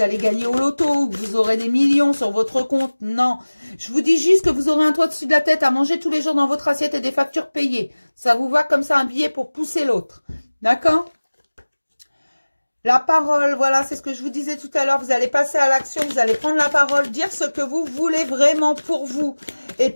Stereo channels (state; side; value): inverted; both; correlation -1.00